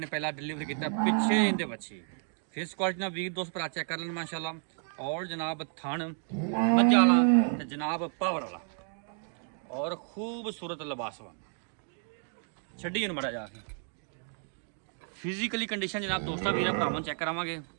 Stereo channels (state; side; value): silent; left; 57 dB below the other